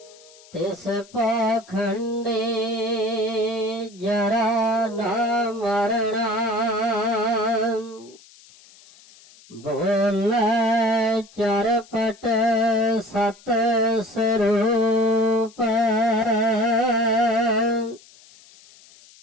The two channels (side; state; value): left; noise; hiss, 25 dB below the sound